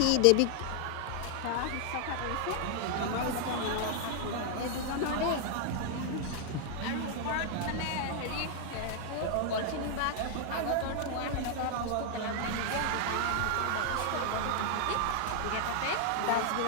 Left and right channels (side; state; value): both; different; correlation 0.00